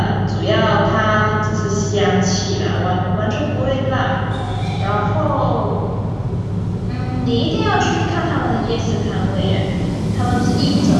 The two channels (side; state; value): both; identical; correlation 1.00